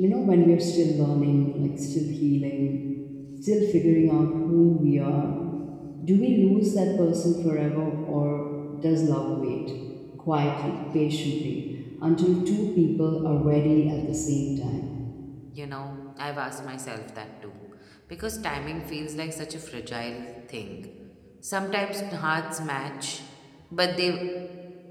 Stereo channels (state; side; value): identical; both; correlation 1.00